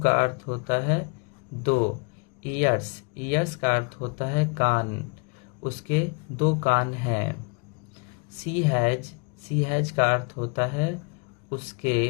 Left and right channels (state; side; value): quieter; right; 33.7 dB